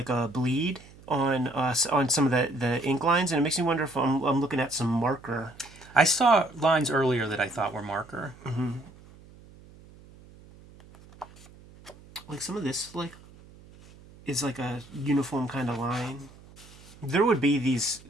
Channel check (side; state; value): right; noise; hum, 22 dB below the sound